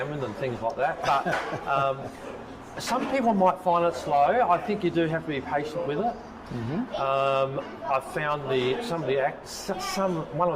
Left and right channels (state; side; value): identical; both; correlation 1.00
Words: and things like that. But some people might find it slow. I think you do have to be patient with it. I found one